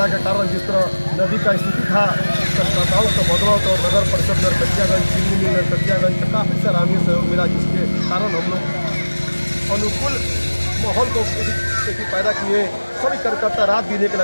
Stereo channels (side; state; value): both; inverted; correlation -1.00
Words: के कारण जिस तरह नदी का स्थिति था, संस्थाओं का बदलाव तो नगर परिषद नरकटियागंज, चिन्नी नरकटियागंज का काफ़ी सराहनीय सहयोग मिला, जिसके कारण हम लोग अनुकूल माहौल को पैदा किए। सभी कार्यकर्ता रात दिन एक